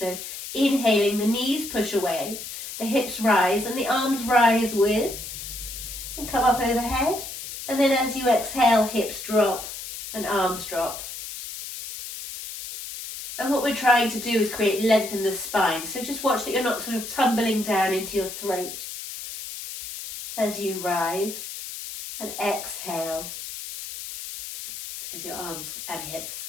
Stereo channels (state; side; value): noise; left; hiss, 9 dB below the sound